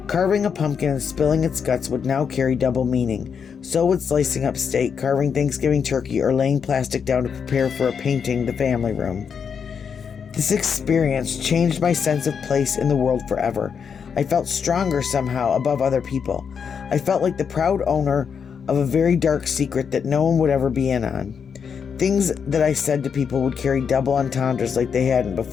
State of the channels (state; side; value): quieter; right; 6.7 dB